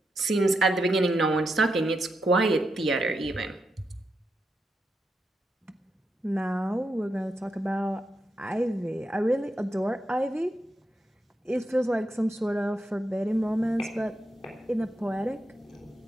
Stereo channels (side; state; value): both; normal; correlation 0.84